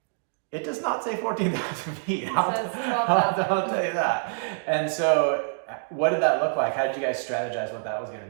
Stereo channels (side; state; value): left; silent; digital silence